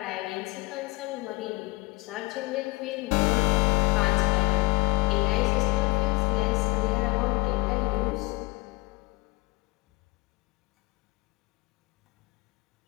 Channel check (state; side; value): quieter; right; 24.8 dB